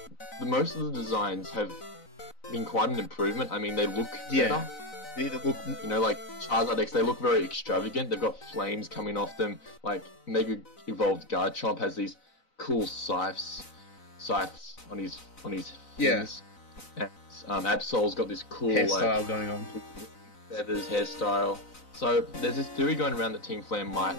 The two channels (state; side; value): late; right; 4.0 ms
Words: most of the designs have been quite an improvement. I mean, they look better. They look... You know, like Charizard X, they look very extravagant. They've got flames coming off them. Like Mega Evolved Garchomp has these cool scythes on his fins. And Absol's got this cool hairstyle going on. feathers hairstyle. So there's this theory going around that Team Flare might